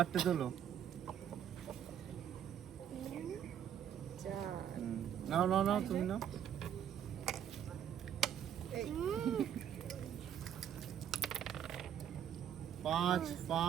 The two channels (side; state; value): left; quieter; 9.5 dB